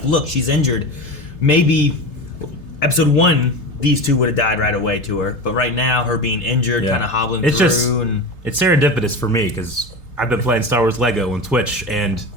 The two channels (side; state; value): right; late; 3.3 ms